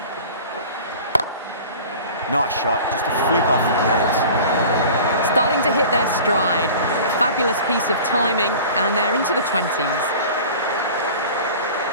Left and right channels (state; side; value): inverted; both; correlation -0.41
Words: Nice shot, just a flick off the pads. Starting to hit their stride. Fabulous piece of timing, and they're into the 20s.